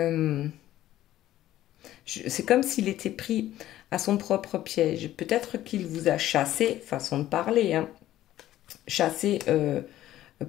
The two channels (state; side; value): quieter; right; 13.8 dB